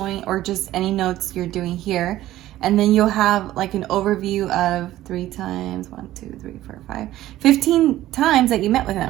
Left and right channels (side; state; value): left; quieter; 14.6 dB